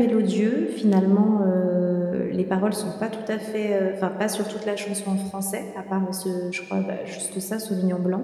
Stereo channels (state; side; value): identical; both; correlation 1.00